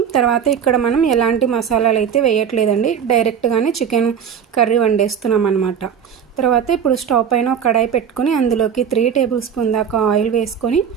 తర్వాత ఇక్కడ మనం ఎలాంటి మసాలాలు అయితే వేయట్లేదండి, డైరెక్ట్గానే చికెన్ కర్రీ వండేస్తున్నాం అనమాట. తర్వాత ఇప్పుడు స్టవ్ పైన ఒక కడాయి పెట్టుకొని అందులోకి 3 టేబుల్ స్పూన్ దాకా ఆయిల్ వేసుకొని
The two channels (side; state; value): left; quieter; 7.9 dB